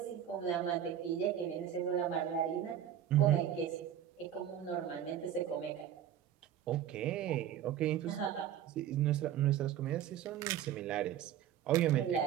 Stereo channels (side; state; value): left; quieter; 10.3 dB